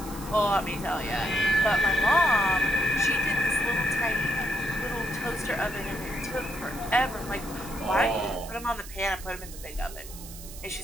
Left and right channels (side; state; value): right; noise; hiss, 15 dB below the sound